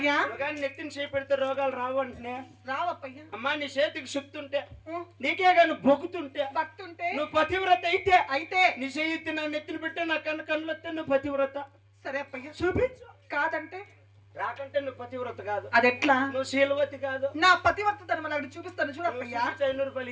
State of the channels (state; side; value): identical; both; correlation 1.00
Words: కానీ నెత్తిని చేపెడితే రోగాలు రావు అంటే రావప్పయ్యా, అమ్మా నీ చేతికి శక్తి ఉంటే నీకే కానీ బొక్కుతుంటే భక్తుంటే నువ్వు పతివ్రత అయితే నీ చేయి నా నెత్తిని పెట్టే నా కళ్ళు వస్తే నువ్వు పతివ్రత, సరే అప్పయ్యా చూపించు, కాదంటే రాకంటే నువ్వు పతివ్రత కాదు, అది ఎట్లా నువ్వు శీలవతి కాదు, నా పతివర్త మనం చూపిస్తాను చూడప్పయ్యా, 500 రూపాయలు